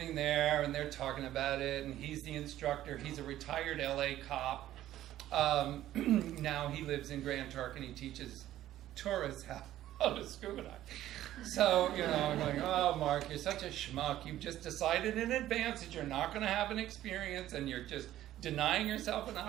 there and they're talking about it, and he's the instructor. He's a retired LA cop. Now he lives in Grand Turk and he teaches tourists how to scuba dive. So, I'm like, "Oh, Marc, you're such a schmuck. You've just decided in advance that you're not going to have an experience, and you're just denying yourself an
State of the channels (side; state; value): left; quieter; 13.4 dB